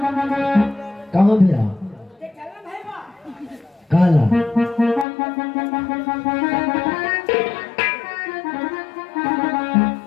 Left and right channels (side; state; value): right; drops out; at 5.1 s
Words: कहाँ भैया? काला